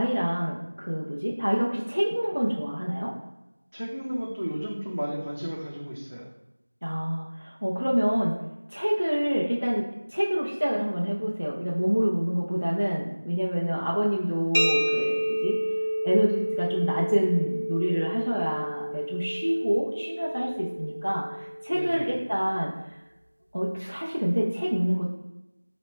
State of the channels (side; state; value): both; inverted; correlation -1.00